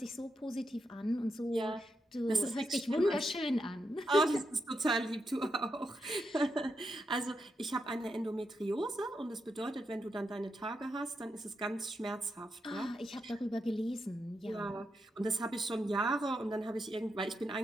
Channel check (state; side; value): normal; both; correlation 0.84